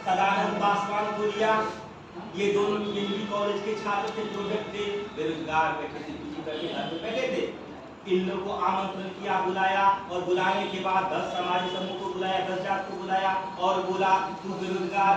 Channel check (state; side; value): identical; both; correlation 1.00